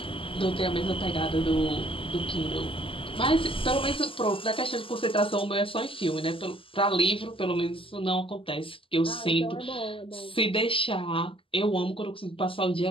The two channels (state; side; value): late; right; 0.26 ms